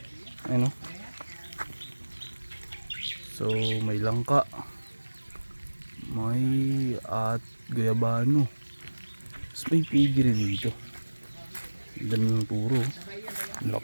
Ayun, oh. So may langka, may at guyabano. Tapos may pigiri dito. Ganun puro,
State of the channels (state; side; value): inverted; both; correlation -1.00